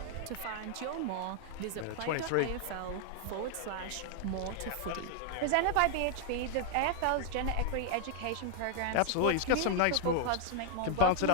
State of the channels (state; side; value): different; both; correlation 0.00